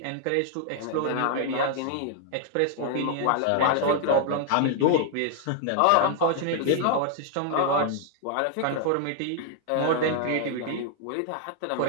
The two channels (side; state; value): both; different; correlation 0.00